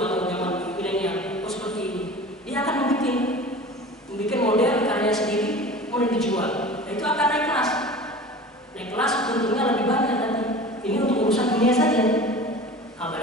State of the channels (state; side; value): normal; both; correlation 0.38